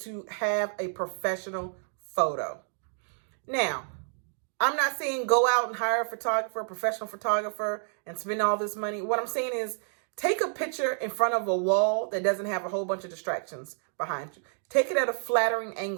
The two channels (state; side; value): silent; left; 58 dB below the other